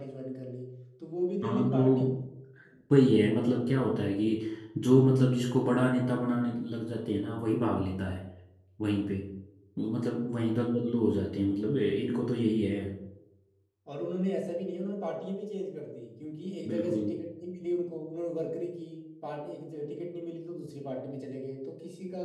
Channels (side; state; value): both; identical; correlation 1.00